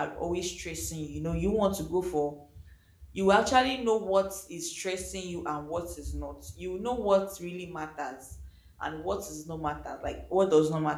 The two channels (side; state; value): both; identical; correlation 1.00